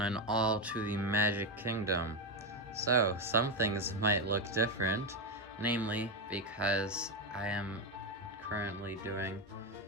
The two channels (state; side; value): normal; both; correlation 0.08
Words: all, to the Magic Kingdom. So, some things might look different, namely because I am currently doing